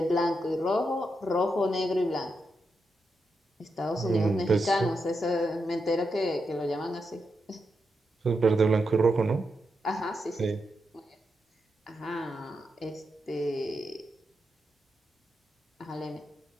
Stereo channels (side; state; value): both; normal; correlation 0.85